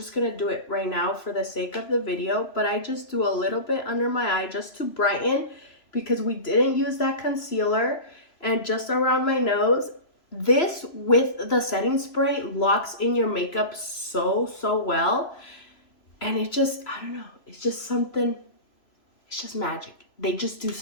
going to do it right now for the sake of the video. But I just do a little bit under my eye just to brighten, because we didn't use that concealer. And just around my nose. This with the setting spray locks in your makeup so well, and it just, I don't know, it's just something, it's just magic. They just do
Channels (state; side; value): late; right; 3.0 ms